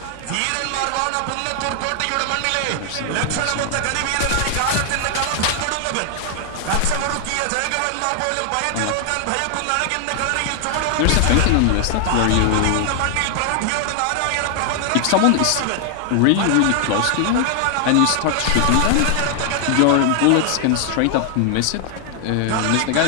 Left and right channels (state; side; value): different; both; correlation 0.00